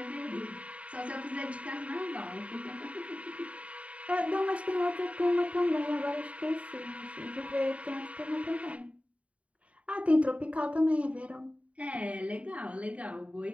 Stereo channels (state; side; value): late; left; 0.065 ms